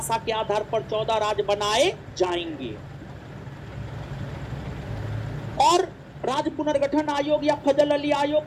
के आधार पर 14 राज्य बनाए जाएंगे। और राज्य पुनर्गठन आयोग या फजल अली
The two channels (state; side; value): identical; both; correlation 1.00